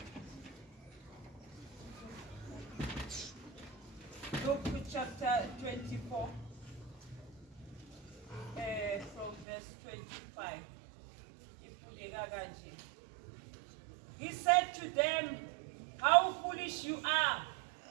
Luke chapter 24, from verse 25. He said to them, "How foolish you are!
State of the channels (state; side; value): drops out; left; at 9.5 s